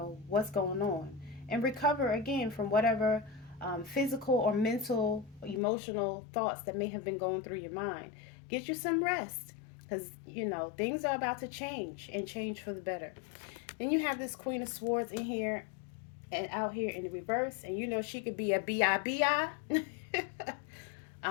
what's going on, and recover again from whatever physical or mental, emotional thoughts that may have been going through your mind. Get you some rest because, things are about to change and change for the better. Then you have this Queen of Swords in here and out here in the reverse, and she could be a B-I-B-I.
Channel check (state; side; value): drops out; right; at 5.6 s